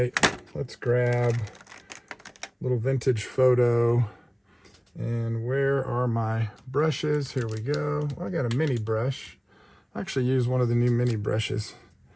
Let's grab a little vintage photo. And where are my brushes? Here we go. Well, I got a mini brush. I actually used one of the new mini brushes.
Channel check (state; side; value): identical; both; correlation 1.00